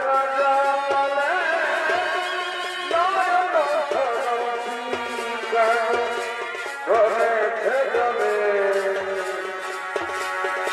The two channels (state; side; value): identical; both; correlation 1.00